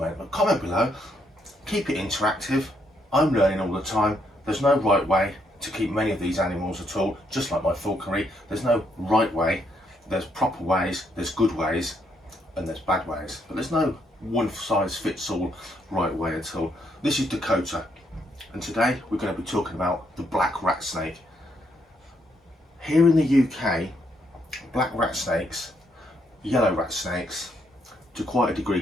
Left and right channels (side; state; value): both; normal; correlation 0.74